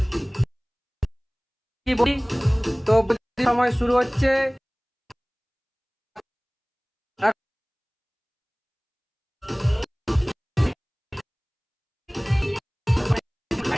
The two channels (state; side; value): identical; both; correlation 1.00